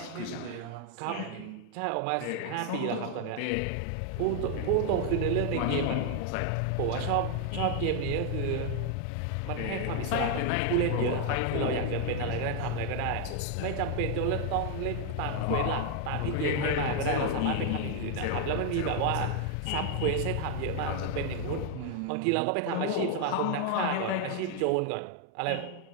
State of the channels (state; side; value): different; both; correlation 0.00